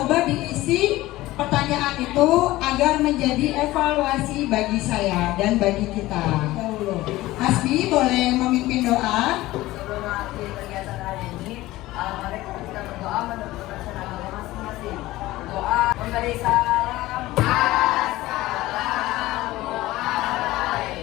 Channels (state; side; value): quieter; right; 17.5 dB